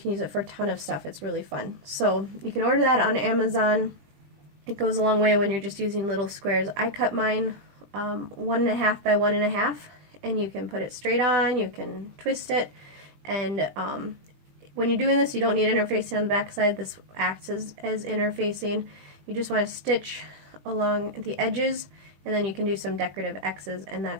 use it for a ton of stuff. It's really fun. So you can order that on Amazon. It goes a long way when you're just using little squares. I cut mine 1.5 by 1.5, and you can put it straight on, you can twist it, and when you're doing this, you don't need interfacing on the back side. This acts as interfacing. You just want to stitch along the edges, and then you can do some decorative X's and that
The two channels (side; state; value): left; late; 21 ms